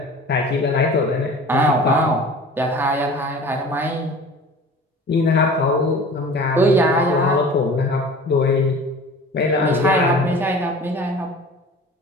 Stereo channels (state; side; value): normal; both; correlation 0.41